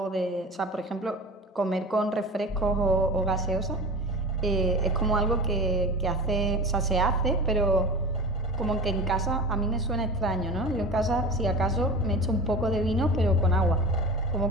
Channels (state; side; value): normal; both; correlation 0.32